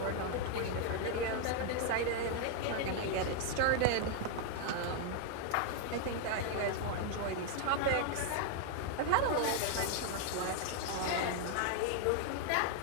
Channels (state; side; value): different; both; correlation 0.00